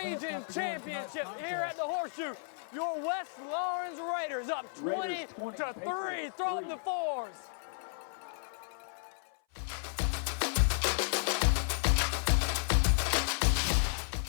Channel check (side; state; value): right; silent; 56 dB below the other